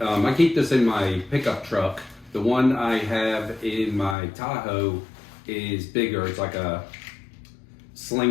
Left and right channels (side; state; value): right; drops out; at 4.2 s